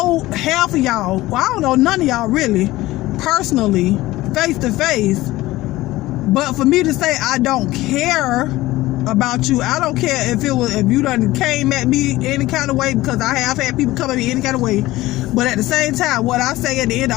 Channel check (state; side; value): quieter; right; 17.7 dB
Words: half of y'all. Well, I don't know none of y'all really, personally, face to face. But for me to say I don't care about you, I don't care if you done came at me any kind of way, because I have had people come at me any kind of way. But at the same time, what I say at the end